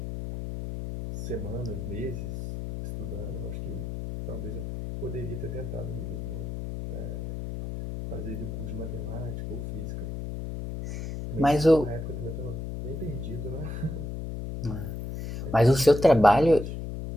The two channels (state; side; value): noise; left; hum, 6 dB below the sound